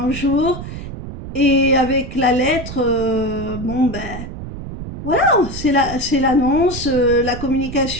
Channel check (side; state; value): right; noise; rumble, 10 dB below the sound